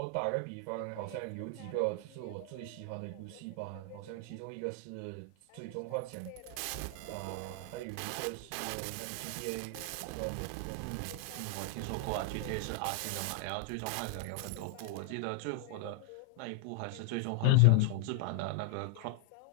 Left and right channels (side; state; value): both; different; correlation 0.00